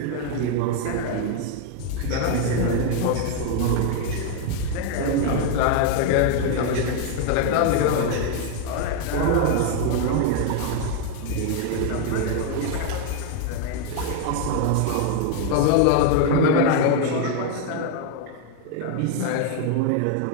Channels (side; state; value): both; different; correlation 0.01